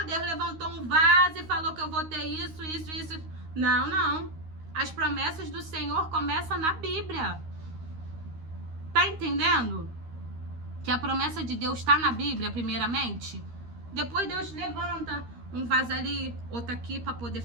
Deus levantou um vaso e falou que eu vou ter isso. Não, não. As promessas do Senhor começam na Bíblia. Tá entendendo? Que a promessa de Deus está na Bíblia, primeiramente. Depois Deus levanta um vaso ali, outro aqui, para poder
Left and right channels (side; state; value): left; late; 13 ms